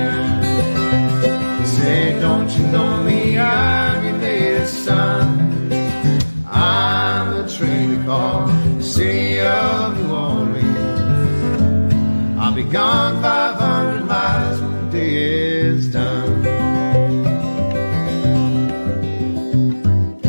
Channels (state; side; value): inverted; both; correlation -1.00